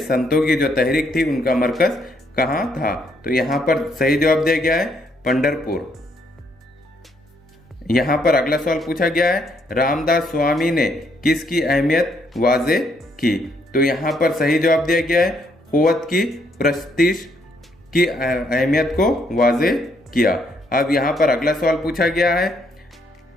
की जो तहरीक थी उनका मरकज कहाँ था? तो यहाँ पर सही जवाब दिया गया है पंढरपुर। यहाँ पर अगला सवाल पूछा गया है रामदास स्वामी ने किसकी अहमियत वाजे की? तो यहाँ पर सही जवाब दिया गया है कुव्वत की प्रस्तीश की अहमियत को वाजे किया। अब यहाँ पर अगला सवाल पूछा गया है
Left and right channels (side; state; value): both; normal; correlation 0.72